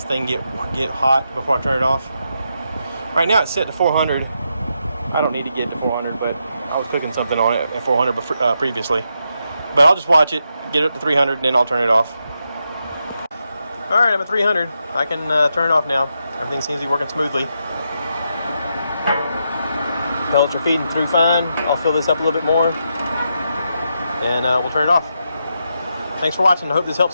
thing get hot before I turn it off. Right now it's set to 400. I don't need to get to 400, but I was cooking something on it at 400 previously. But I'll just watch it, get it up to 300, and then I'll turn it off. All right, I'm at 300. I can turn it off now. Everything seems to be working smoothly. Pellets are feeding through fine. I'll fill this up a little bit more, and we'll turn it off. Thanks for watching. I hope this helps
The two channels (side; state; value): both; inverted; correlation -0.83